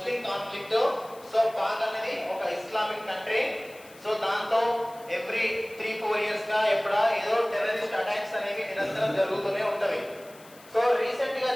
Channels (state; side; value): noise; left; hiss, 23 dB below the sound